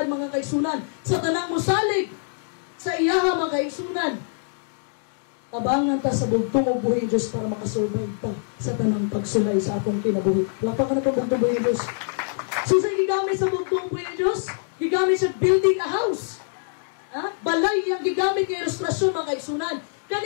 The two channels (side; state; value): right; silent; digital silence